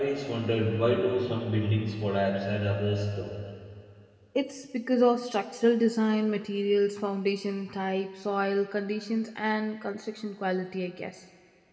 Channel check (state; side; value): identical; both; correlation 1.00